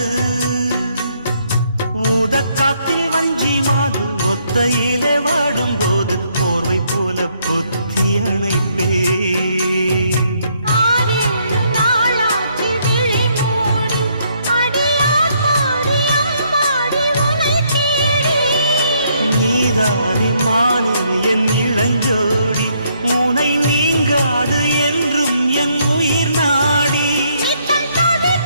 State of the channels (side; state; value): both; inverted; correlation -0.71